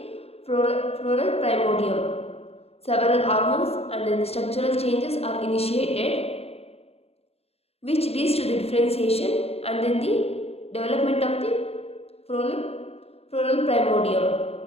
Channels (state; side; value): late; right; 0.29 ms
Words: floral primordium. Several hormones and the structural changes are initiated, which leads to the differentiation and then the development of the floral primordium.